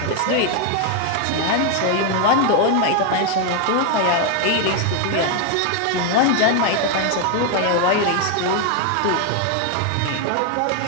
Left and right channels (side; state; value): both; different; correlation 0.01